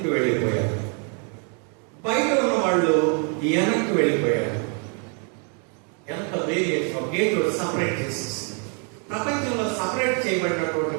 వెళ్ళిపోయారు, బయట ఉన్న వాళ్ళు వెనక్కి వెళ్ళిపోయారు. ఎంత వేరియేషన్! గేట్ సపరేట్ చేసేసి ప్రపంచంలో సపరేట్ చేయబడినటువంటి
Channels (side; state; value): left; quieter; 38.9 dB